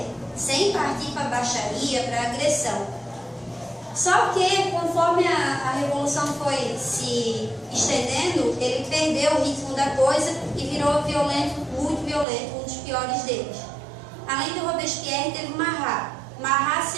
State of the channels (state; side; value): drops out; left; at 12.2 s